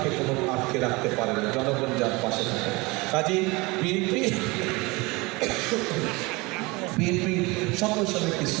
কোনো আটকে রাখতে পারে না, জনগণ যার পাশে থাকে। কাজেই বিএনপি সকল সময় একটি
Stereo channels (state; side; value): quieter; left; 24.4 dB